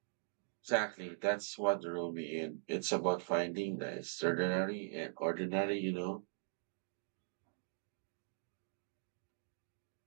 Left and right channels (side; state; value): left; silent; digital silence